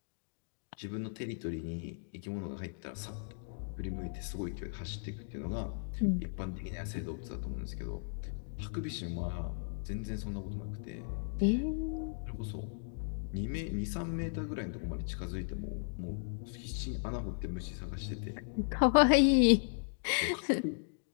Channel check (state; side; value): silent; right; digital silence